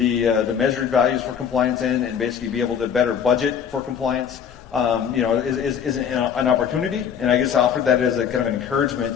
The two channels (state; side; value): quieter; right; 7.8 dB